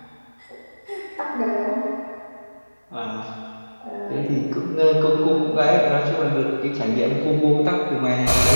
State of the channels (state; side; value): inverted; both; correlation -1.00